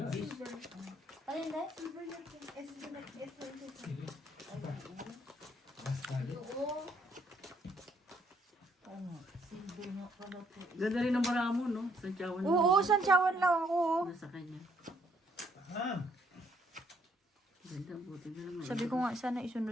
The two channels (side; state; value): both; normal; correlation 0.69